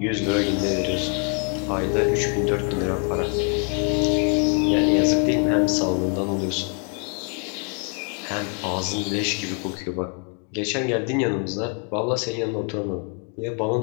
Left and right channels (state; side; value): quieter; right; 40.0 dB